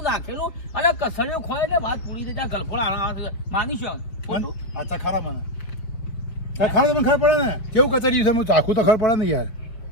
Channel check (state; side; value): late; right; 5.2 ms